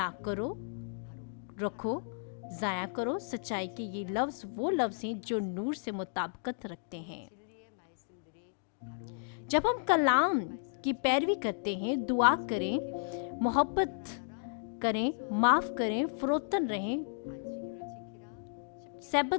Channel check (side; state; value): right; silent; digital silence